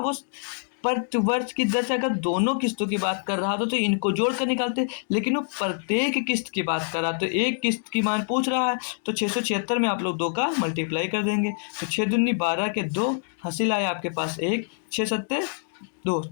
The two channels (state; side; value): silent; right; digital silence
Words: प्रति वर्ष की दर से अगर दोनों किस्तों की बात कर रहा था तो इनको जोड़ कर निकालते, लेकिन वो प्रत्येक किस्त की बात कर रहा तो एक किस्त की मान पूछ रहा है, तो 676 में आप लोग 2 का मल्टीप्लाई कर देंगे, तो 6 दूनी 12 के 2 हासिल आया आपके पास 1, 6 सत्ते 2,